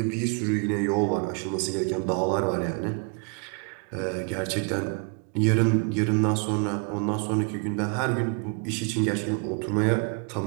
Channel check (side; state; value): left; quieter; 36.3 dB